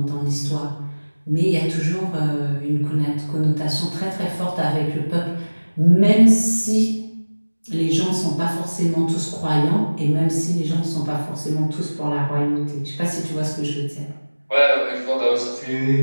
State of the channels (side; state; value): both; inverted; correlation -1.00